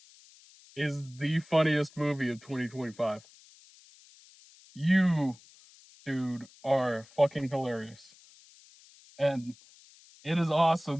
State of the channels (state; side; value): noise; left; hiss, 25 dB below the sound